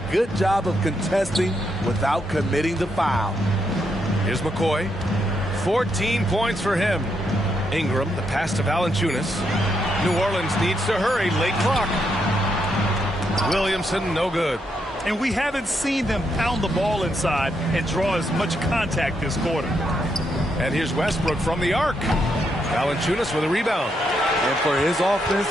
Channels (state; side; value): normal; both; correlation 0.79